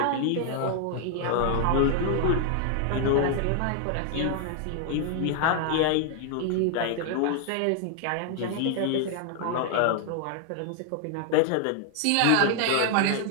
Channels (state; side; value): different; both; correlation 0.00